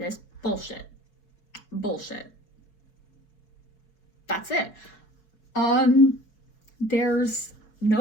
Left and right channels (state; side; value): late; right; 5.0 ms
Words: bullshit. That's it. There's